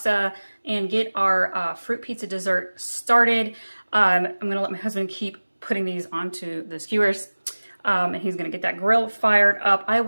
and get our fruit pizza dessert started. I'm gonna let my husband keep putting these onto the skewers and he's gonna get that grill fired up. I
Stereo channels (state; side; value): inverted; both; correlation -1.00